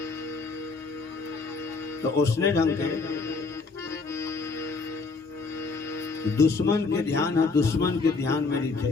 तो उसने ढंग के दुश्मन के ध्यान है, दुश्मन के ध्यान में नहीं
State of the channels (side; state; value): right; quieter; 4.2 dB